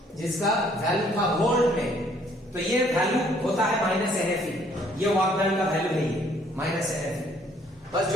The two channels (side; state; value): both; normal; correlation 0.63